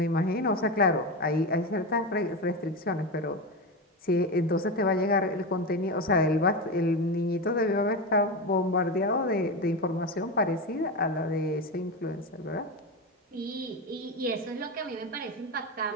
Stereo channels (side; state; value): both; normal; correlation 0.17